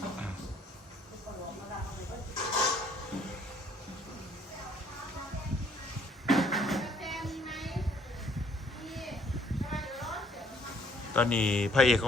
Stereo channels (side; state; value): both; normal; correlation 0.62